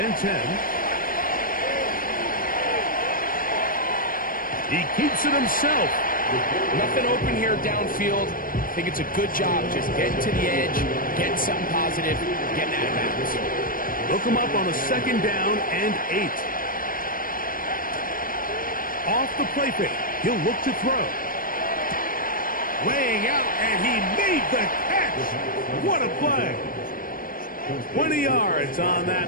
and 10. He keeps it himself. Nothing open here downfield. I think it's a good job just getting to the edge, getting something positive, getting out of bounds. Look him up on a 2nd down and 8. Off the play fake. He'll look to throw. Laying out, and he made the catch. What a play. 20 yards on that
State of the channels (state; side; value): late; right; 0.41 ms